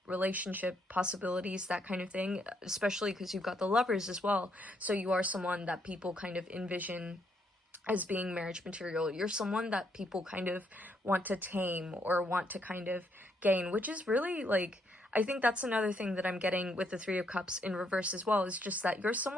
relationship possibilities, that kind of thing, especially because you've got the Lovers as well. So you are someone that people kind of envision as being marriage material. You're someone that people kind of want to tame or want to kind of gain, which is really like, I think that's another thing that I'm getting with the Three of Cups in reverse as well, is just that you're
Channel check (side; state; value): both; normal; correlation 0.74